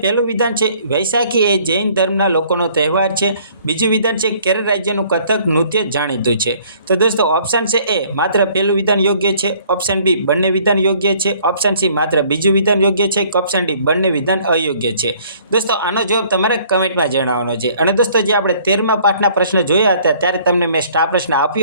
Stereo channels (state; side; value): inverted; both; correlation -0.58